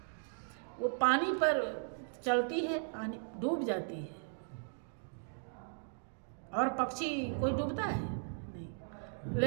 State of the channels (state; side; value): silent; left; digital silence